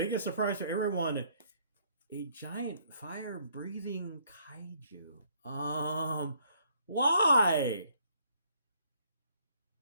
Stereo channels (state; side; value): inverted; both; correlation -0.66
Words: surprise for everyone, a giant fire-breathing kaiju. Why?